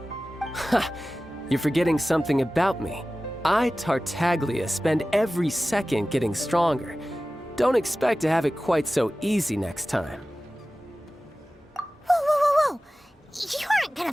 Ha! You're forgetting something about me. I, Tartaglia, spend every second getting stronger. Don't expect to have it quite so easy next time. Whoa. You aren't gonna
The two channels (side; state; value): both; normal; correlation 0.96